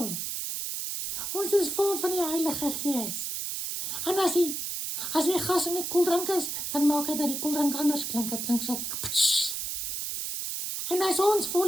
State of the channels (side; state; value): right; noise; hiss, 3 dB below the sound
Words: Ons is vol van die Heilige Gees. En as die gas in die koeldrank is, dan maak hy dat die koeldrank anders klink. Het klink so, pssst. En as ons